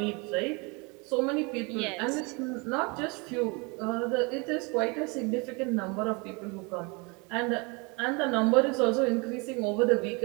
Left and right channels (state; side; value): quieter; left; 29.6 dB